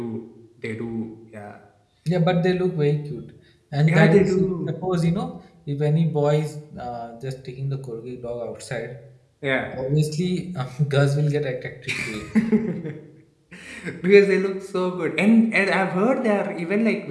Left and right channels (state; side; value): identical; both; correlation 1.00